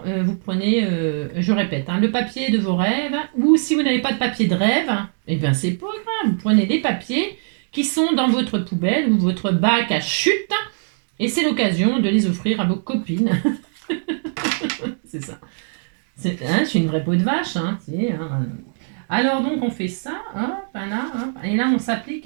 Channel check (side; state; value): left; silent; 65 dB below the other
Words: vous prenez, je répète, hein, le papier de vos rêves, ou si vous n'avez pas de papier de rêve, eh bien, c'est pas grave. Vous prenez des papiers qui sont dans votre poubelle ou votre bac à chute, et c'est l'occasion de les offrir à vos copines. C'est ça. Hein, je suis une vraie peau de vache. Hein, hein. Alors, donc, on fait ça, hop, là, hop, et là, on